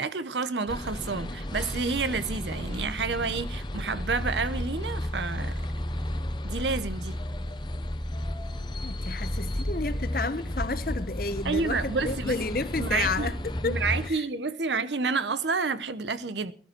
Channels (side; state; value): both; normal; correlation 0.47